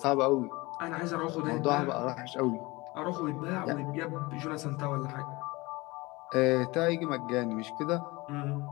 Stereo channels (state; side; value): quieter; right; 22.7 dB